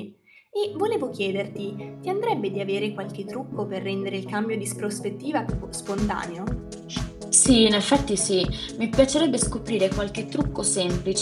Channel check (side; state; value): both; identical; correlation 1.00